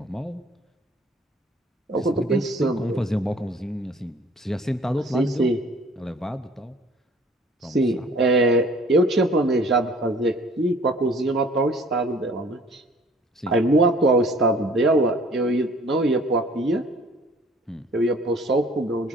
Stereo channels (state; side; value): normal; both; correlation 0.53